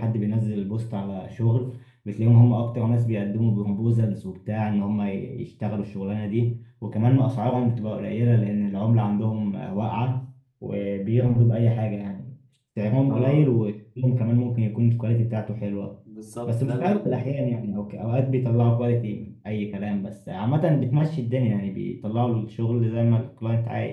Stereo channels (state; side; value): identical; both; correlation 1.00